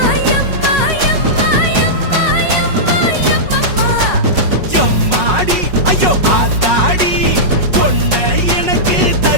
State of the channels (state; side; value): late; left; 5.5 ms